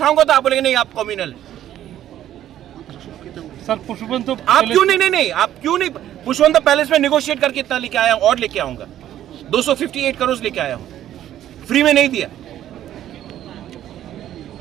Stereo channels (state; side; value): quieter; left; 11.9 dB